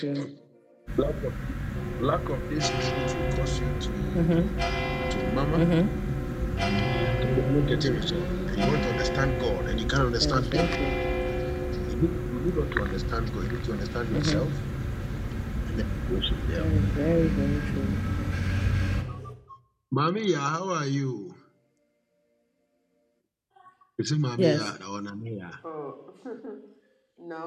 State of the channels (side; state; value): both; identical; correlation 1.00